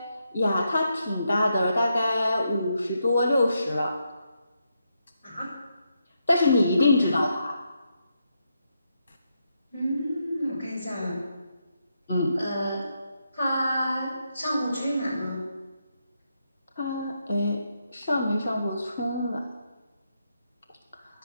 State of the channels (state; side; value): inverted; both; correlation -0.82